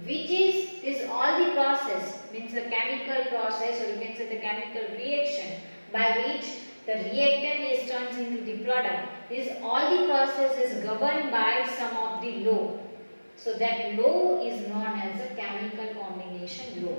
which is all the process, means the chemical process, or you can say the chemical reaction by which the reactant is turned into the product. This all the process is governed by some of the law. So that law is known as a chemical combination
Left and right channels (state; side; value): inverted; both; correlation -1.00